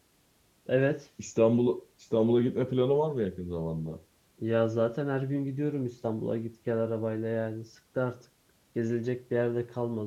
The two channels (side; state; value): both; identical; correlation 1.00